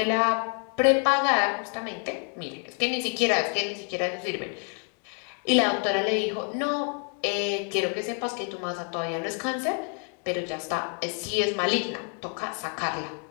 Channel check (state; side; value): quieter; right; 38.8 dB